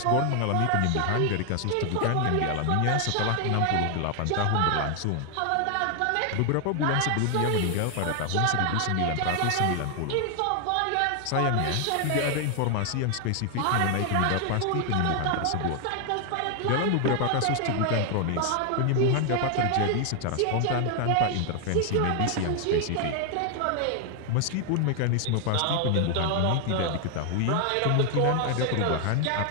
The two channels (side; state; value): both; different; correlation 0.00